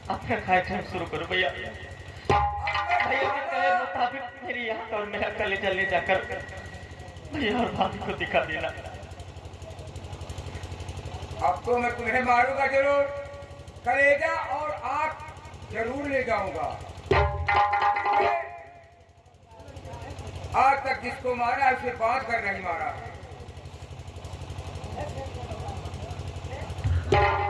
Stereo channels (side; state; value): both; identical; correlation 1.00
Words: अपना कार्यक्रम शुरू करो भैया। भैया के कहे मुताबिक मेरी आंख और मेरा कलेजा ले जाकर भैया और भाभी को दिखा देना। अब तो मैं तुम्हें मारूंगा जरूर, कलेजा और आंख जरूर ले जाऊंगा। आज तक जिसको मारा उसे बांध कर नहीं मारा।